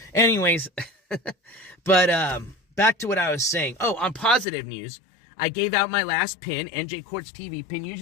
Anyways, but back to what I was saying. Oh, on positive news, I gave out my last pin, NJCourts TV pin.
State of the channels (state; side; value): drops out; right; at 4.5 s